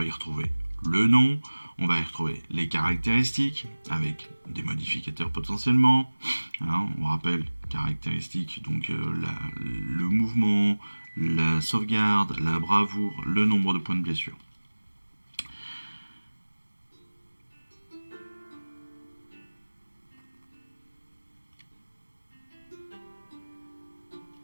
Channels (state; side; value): inverted; both; correlation -1.00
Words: y retrouver le nom, on va y retrouver les caractéristiques avec des modificateurs potentiellement. On rappelle caractéristiques, donc le mouvement, la sauvegarde, la bravoure, le nombre de points de blessure.